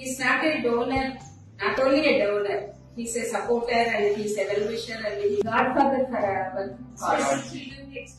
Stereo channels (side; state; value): both; identical; correlation 1.00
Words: is not a donor, not only a donor. He is a supporter and he is a well-wisher and he is godfather for our cause. Children,